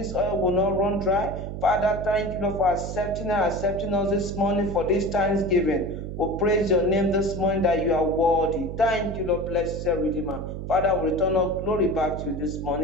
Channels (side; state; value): right; noise; hum, 7 dB below the sound